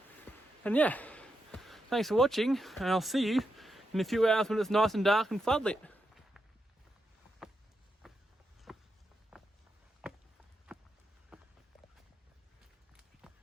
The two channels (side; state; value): both; normal; correlation 0.85